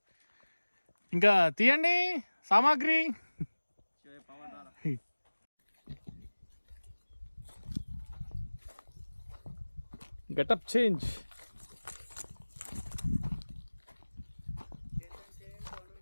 ఇంకా తీయండి సామాగ్రి. Getup change.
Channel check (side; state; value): both; inverted; correlation -1.00